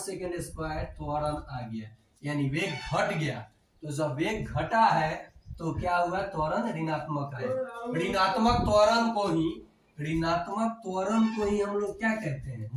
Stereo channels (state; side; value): identical; both; correlation 1.00